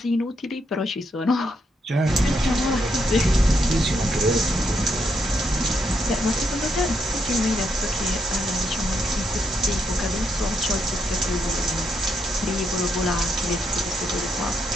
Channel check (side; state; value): both; normal; correlation 0.78